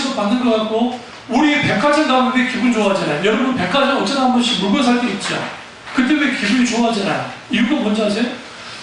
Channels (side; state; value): both; identical; correlation 1.00